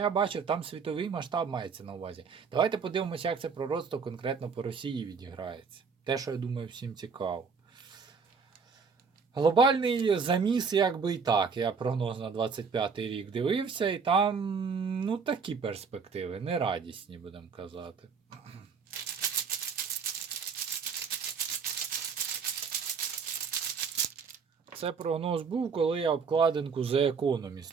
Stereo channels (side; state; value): left; quieter; 5.6 dB